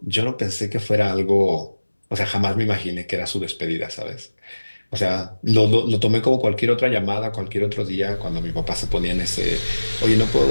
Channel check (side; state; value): both; inverted; correlation -1.00